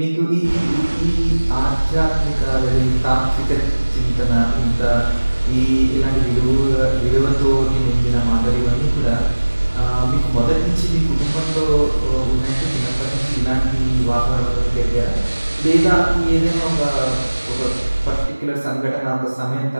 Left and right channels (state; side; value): inverted; both; correlation -1.00